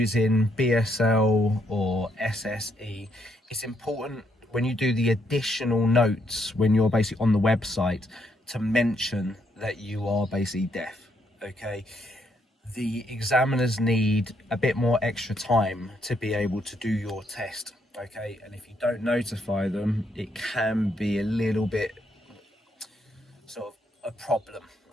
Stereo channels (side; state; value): both; normal; correlation 0.74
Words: BSL or SSE, it's important when you do the additional notes, when you're basically on the website, to mention that you are basically deaf, okay? The examiners need a bit more extra time to be able to do your test, okay? And if you don't notify them, it can be a little bit sort of a problem,